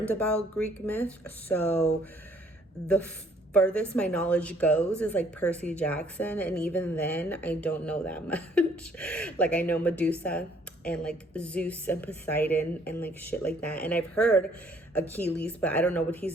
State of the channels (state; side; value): normal; both; correlation 0.62